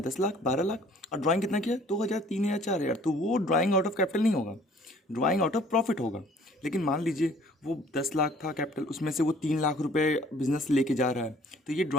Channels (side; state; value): both; normal; correlation 0.55